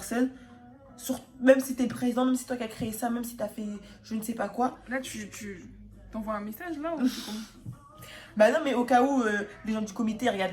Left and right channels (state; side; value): identical; both; correlation 1.00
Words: Même si t'es le président, même si c'est toi qui as créé ça, même si t'as fait je ne sais pas quoi. Là, tu t'envoies un message là ou c'est comment? Bah non, mais au cas où les gens du comité